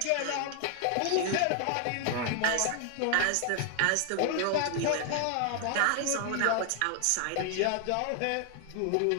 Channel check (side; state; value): both; different; correlation 0.00